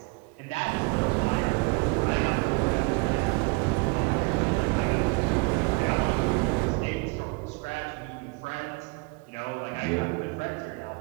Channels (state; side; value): quieter; left; 29.5 dB